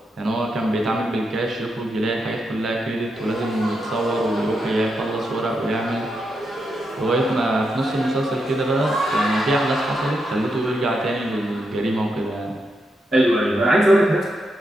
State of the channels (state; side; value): normal; both; correlation 0.84